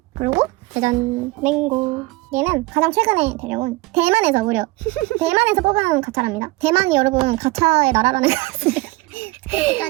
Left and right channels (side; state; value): left; quieter; 22.0 dB